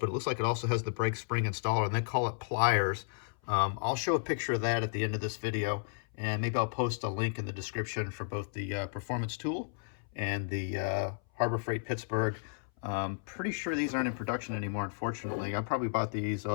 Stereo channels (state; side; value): silent; right; 56 dB below the other